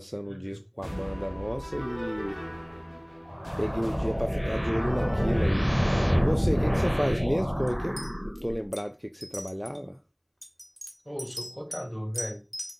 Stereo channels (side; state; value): both; identical; correlation 1.00